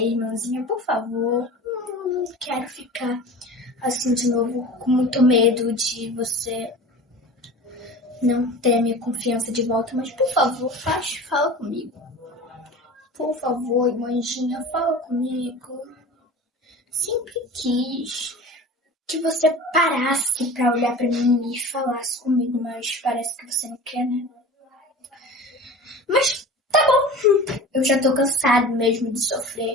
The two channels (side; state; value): both; normal; correlation 0.37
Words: por favor. Não quero ficar assim de novo com muito medo de você não ter a minha confiança de volta, mas por favor, fala comigo. Por favor, irmãzinha, fala comigo. Sempre quis que você parasse pra olhar pra mim e falasse comigo, mas parece que você não quer, né? Mas tá bom, eu já tô cansado mesmo de